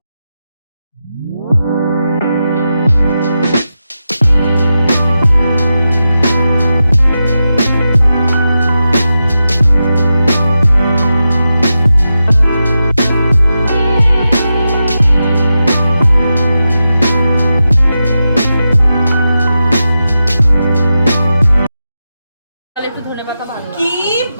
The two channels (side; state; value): both; inverted; correlation -0.90